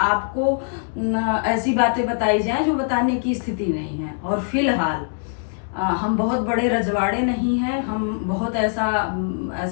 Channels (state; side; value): silent; right; digital silence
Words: ऐसी बातें बताई जाएं जो बताने की स्थिति नहीं है। और फिलहाल हम बहुत बड़े रजवाड़े नहीं हैं, हम बहुत